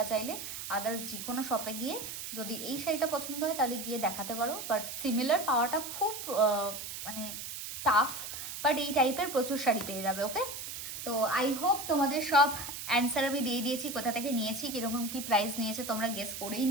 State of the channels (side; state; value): right; noise; hiss, 7 dB below the sound